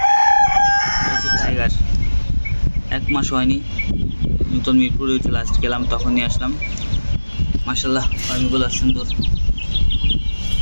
হচ্ছে টাইগার, 1 মাস হয়নি, নতুন মিরপুরে হচ্ছে লাস্ট গেলাম, তখন নিয়ে আসলাম। মাশাআল্লাহ ফার্মিগুলো সুন্দর,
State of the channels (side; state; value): both; inverted; correlation -1.00